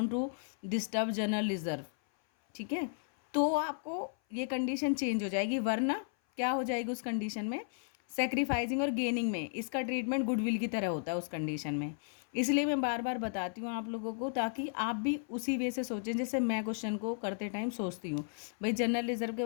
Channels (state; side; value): silent; right; 55 dB below the other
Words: to disturb general reserve. ठीक है, तो आपको ये कंडीशन चेंज हो जाएगी, वरना क्या हो जाएगी उस कंडीशन में, सेक्रीफाइसिंग और गेनिंग में इसका ट्रीटमेंट गुडविल की तरह होता है उस कंडीशन में। इसलिए मैं बार बार बताती हूँ आप लोगों को ताकि आप भी उसी वे से सोचें जैसे मैं क्वेश्चन को करते टाइम सोचती हूँ। भाई जनरल रिजर्व के